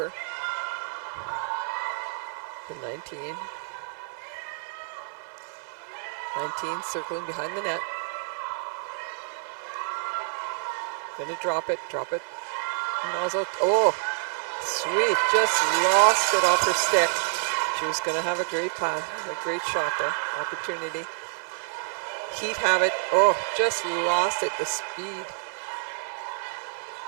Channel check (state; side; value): silent; left; digital silence